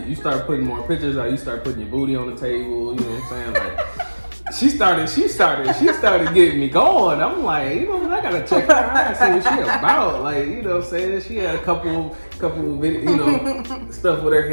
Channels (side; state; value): both; inverted; correlation -1.00